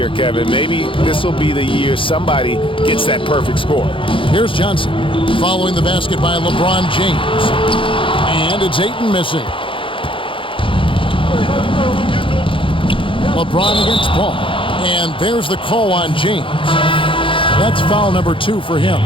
Kevin. Maybe this will be the year somebody gets that perfect score. Here's Johnson following the basket by LeBron James. And it's Ayton missing. LeBron against Paul. And there's the call on James. That's foul number 2 for him.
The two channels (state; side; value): late; right; 0.25 ms